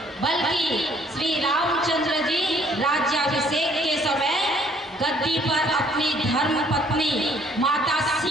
बल्कि श्री रामचंद्र जी राज्याभिषेक के समय गद्दी पर अपनी धर्म पत्नी माता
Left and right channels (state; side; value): normal; both; correlation 0.62